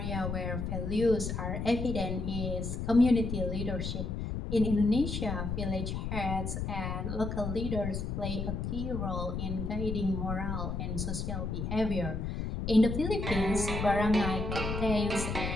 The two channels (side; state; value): left; noise; rumble, 3 dB below the sound